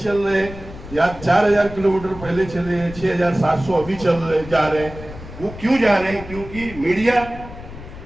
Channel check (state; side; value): noise; left; rumble, 14 dB below the sound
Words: रहे हैं, या 4000 किलोमीटर पहले चले हैं, 6700 अभी जा रहे हैं, वो क्यों जा रहे हैं? क्योंकि मीडिया